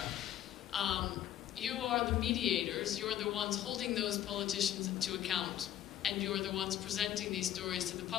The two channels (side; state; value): right; quieter; 11.6 dB